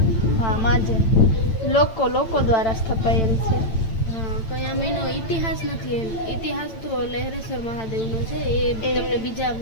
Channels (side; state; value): right; late; 9.0 ms